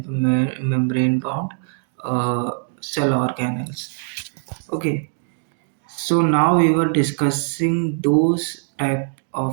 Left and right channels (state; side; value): silent; left; digital silence